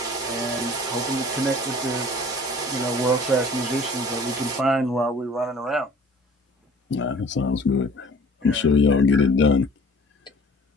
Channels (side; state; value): both; normal; correlation 0.49